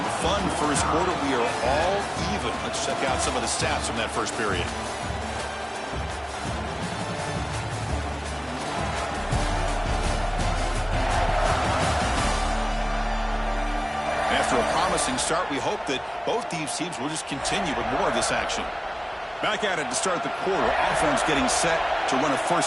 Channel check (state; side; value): identical; both; correlation 1.00